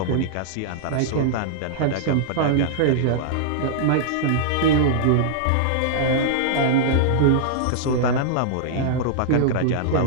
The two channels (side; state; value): both; different; correlation -0.02